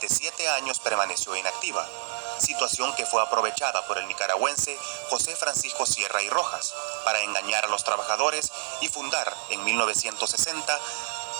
7 años permaneció inactiva, situación que fue aprovechada por el nicaragüense José Francisco Sierra y Rojas para engañar a los trabajadores y fundar en 1960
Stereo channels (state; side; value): silent; left; 60 dB below the other